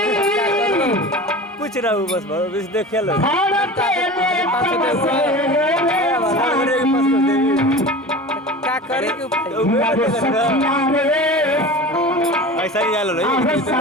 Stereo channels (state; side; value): normal; both; correlation 0.34